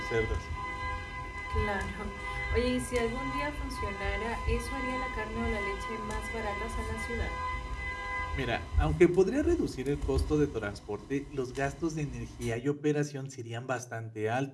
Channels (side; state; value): both; identical; correlation 1.00